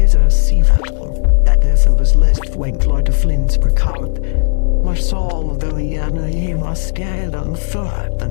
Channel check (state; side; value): silent; right; digital silence